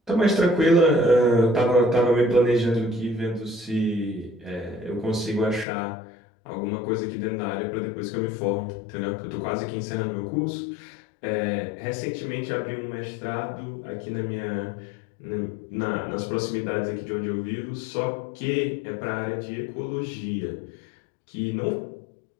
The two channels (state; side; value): drops out; right; at 5.7 s